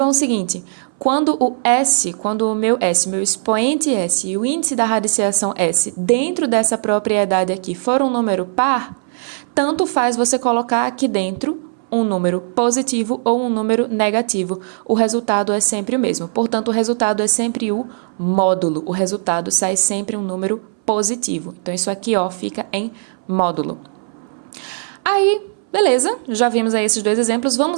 o seguinte, quando o meu expoente S e o índice da radiciação S dentro dessa propriedade aqui for um número par, tanto faz você colocar aqui dentro um número positivo ou um número negativo. O resultado é sempre o mesmo. Portanto, o resultado é sempre o módulo. O resultado sai sempre um número positivo. Então, isso aqui, ó, fica em módulo. Aí, beleza, já vimos aí esses dois exemplos.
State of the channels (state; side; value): silent; left; 61 dB below the other